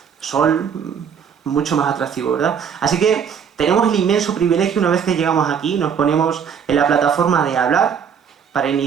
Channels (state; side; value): quieter; left; 7.3 dB